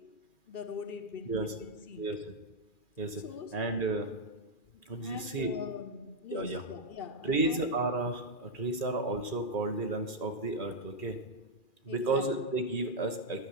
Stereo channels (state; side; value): late; right; 2.4 ms